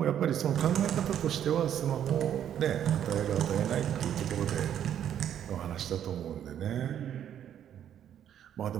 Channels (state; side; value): quieter; left; 9.9 dB